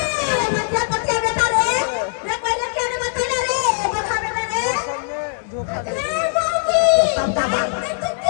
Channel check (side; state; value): right; silent; digital silence